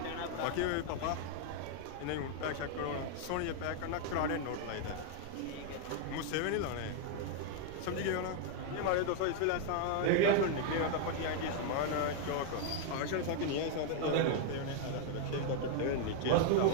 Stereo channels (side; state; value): both; different; correlation 0.00